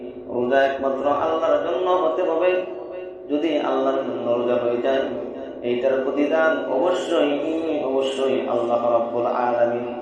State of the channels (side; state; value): both; identical; correlation 1.00